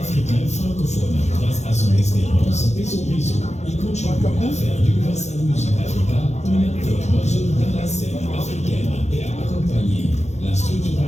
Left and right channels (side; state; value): right; late; 0.33 ms